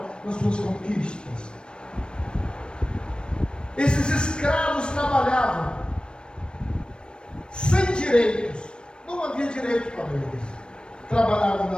nas suas conquistas. Esses escravos trabalhavam sem direitos. Não havia direito para eles. Trabalhavam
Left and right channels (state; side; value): late; right; 0.054 ms